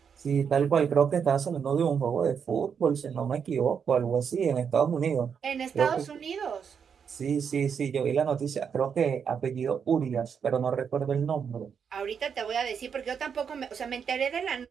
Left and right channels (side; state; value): left; quieter; 7.0 dB